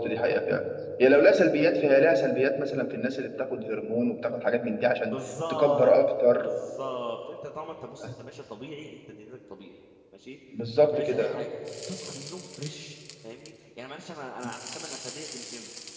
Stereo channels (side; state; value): both; identical; correlation 1.00